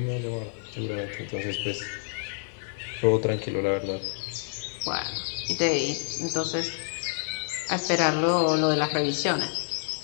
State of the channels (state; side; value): silent; right; 59 dB below the other